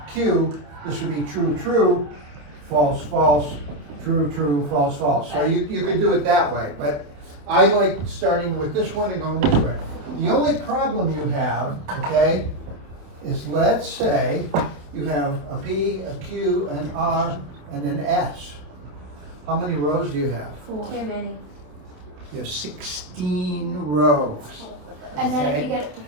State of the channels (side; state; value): left; late; 27 ms